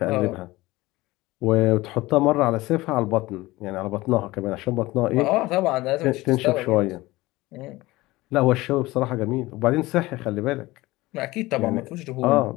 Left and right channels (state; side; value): quieter; right; 19.5 dB